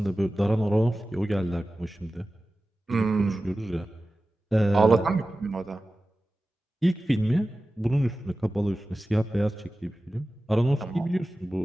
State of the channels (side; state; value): both; normal; correlation 0.95